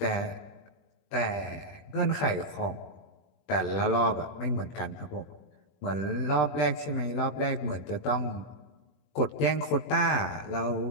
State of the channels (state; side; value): late; right; 20 ms